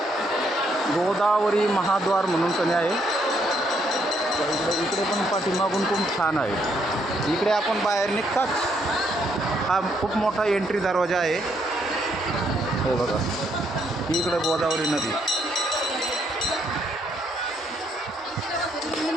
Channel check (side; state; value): both; normal; correlation 0.73